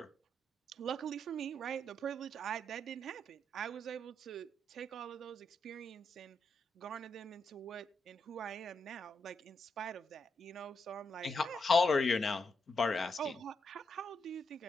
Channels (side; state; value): both; normal; correlation 0.82